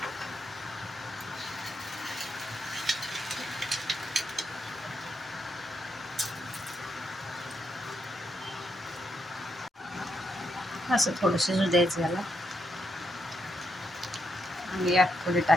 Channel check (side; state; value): both; normal; correlation 0.80